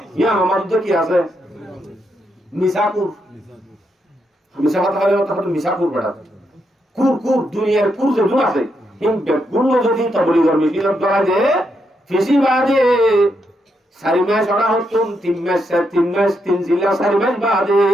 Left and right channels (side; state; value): both; normal; correlation 0.80